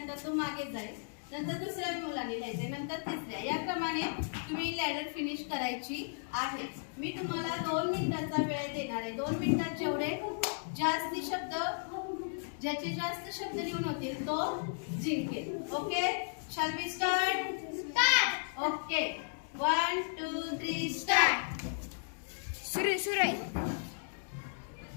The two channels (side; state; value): right; silent; digital silence